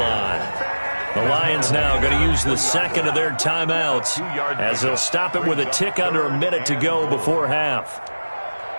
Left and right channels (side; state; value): both; inverted; correlation -1.00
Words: The Lions now going to use the 2nd of their timeouts as they'll stop it with a tick under a minute to go before half.